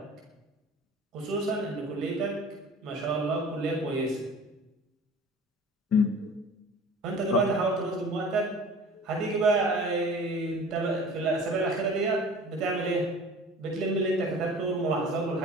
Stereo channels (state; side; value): normal; both; correlation 0.43